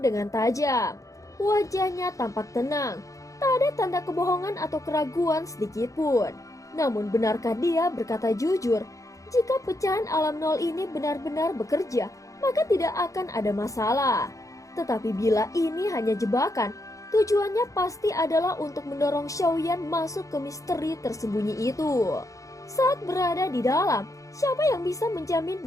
dengan tajam. Wajahnya tampak tenang, tak ada tanda kebohongan atau keraguan sedikit pun. Namun benarkah dia berkata jujur? Jika pecahan alam nol ini benar-benar bekerja, maka tidak akan ada masalah. Tetapi bila ini hanya jebakan, tujuannya pasti adalah untuk mendorong Xiaoyan masuk ke misteri tersembunyi itu. Saat berada di dalam, siapa yang bisa menjamin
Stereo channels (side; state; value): right; late; 0.16 ms